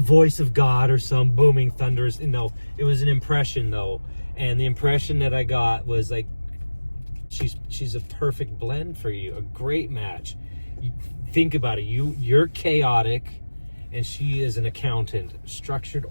of God or some booming thunderous. No, it was an impression though, and the impression that I got was like, she's a perfect blend for you, a great match. You think about it. You're chaotic. And she is an accountant, structured,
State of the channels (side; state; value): both; inverted; correlation -1.00